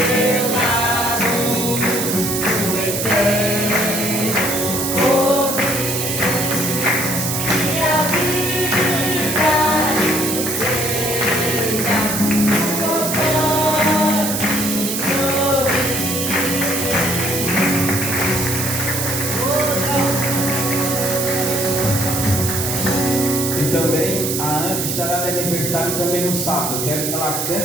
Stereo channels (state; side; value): noise; right; hiss, 2 dB below the sound